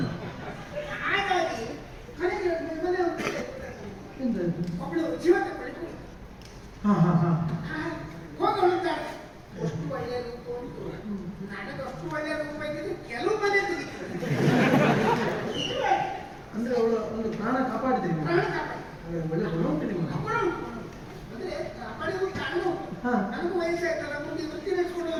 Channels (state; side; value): identical; both; correlation 1.00